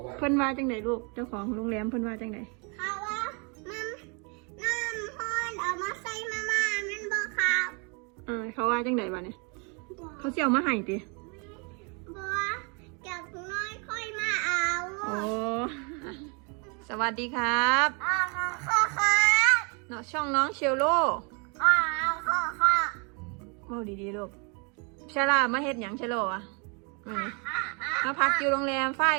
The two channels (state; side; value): quieter; left; 34.0 dB